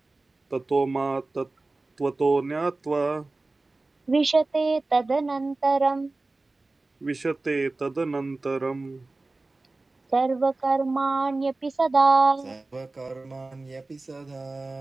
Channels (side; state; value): left; quieter; 3.3 dB